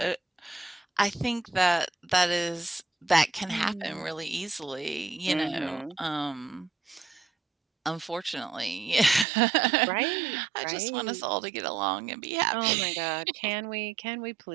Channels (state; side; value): drops out; left; at 9.2 s